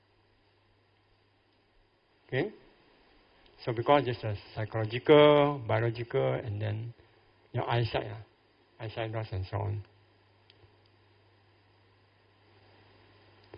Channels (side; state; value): both; identical; correlation 1.00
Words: Okay? So because it's a psychological, biological, and then your eyesight loss and so on.